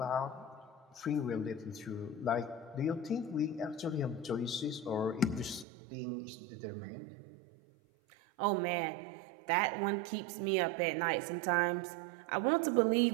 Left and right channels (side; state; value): left; drops out; at 5.7 s